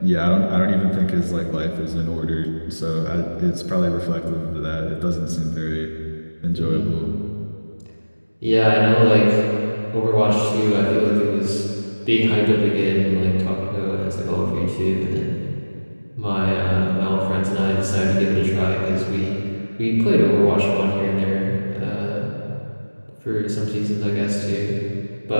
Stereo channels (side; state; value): both; inverted; correlation -1.00